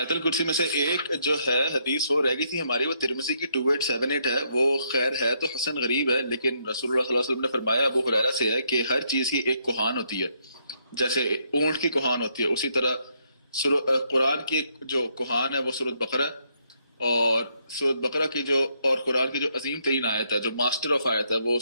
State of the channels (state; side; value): inverted; both; correlation -0.74